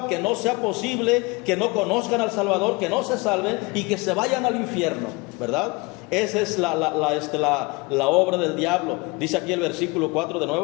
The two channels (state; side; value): quieter; right; 25.4 dB